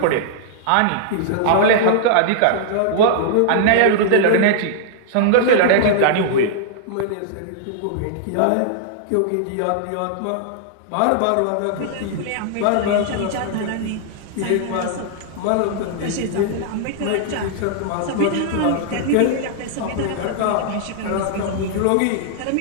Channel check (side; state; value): both; different; correlation -0.01